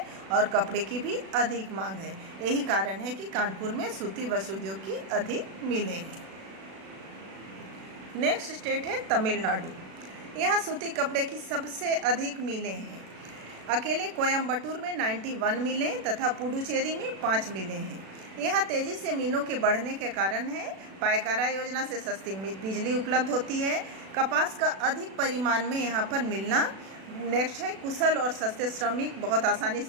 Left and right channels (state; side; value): late; left; 36 ms